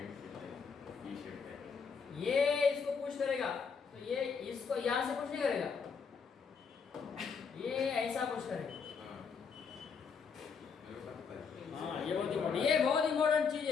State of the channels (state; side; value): quieter; right; 5.8 dB